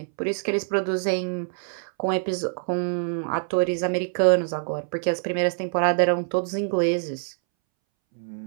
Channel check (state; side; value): silent; left; 62 dB below the other